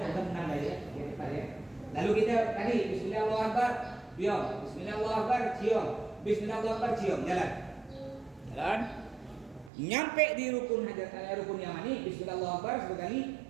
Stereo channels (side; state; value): left; drops out; at 9.7 s